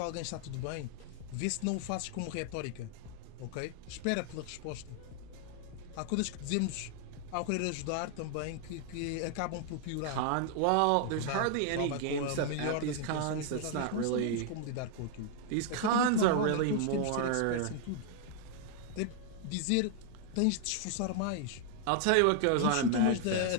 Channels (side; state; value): both; different; correlation 0.00